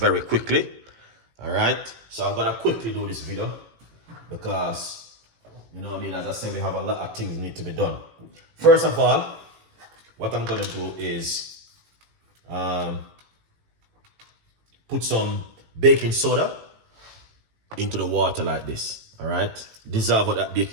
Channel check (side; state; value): left; late; 18 ms